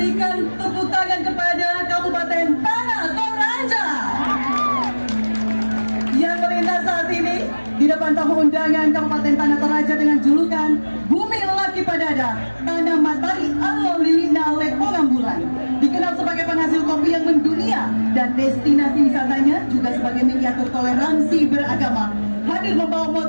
tepuk tangan kepada Kabupaten Tanah Toraja yang melintas saat ini di depan tamu undangan Kabupaten Tanah Toraja dengan julukan Bumi Laki Padada, Tanah Matahari Allah Lilina Lepongan Bulan. Dikenal sebagai penghasil kopi yang mendunia dan destinasi wisatanya juga sebagai miniatur toleransi beragama. Hadir membawa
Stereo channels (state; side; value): inverted; both; correlation -1.00